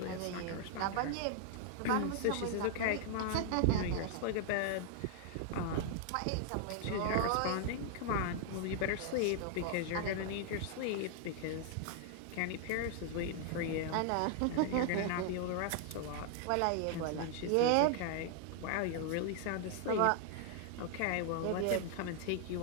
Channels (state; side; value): different; both; correlation 0.00